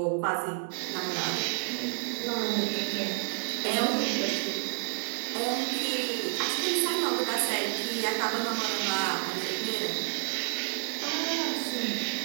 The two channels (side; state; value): left; silent; digital silence